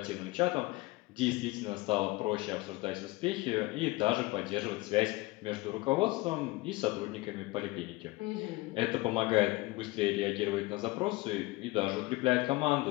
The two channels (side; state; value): right; quieter; 21.2 dB